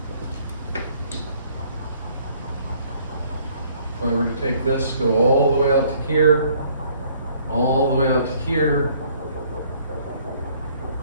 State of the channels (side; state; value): both; inverted; correlation -0.61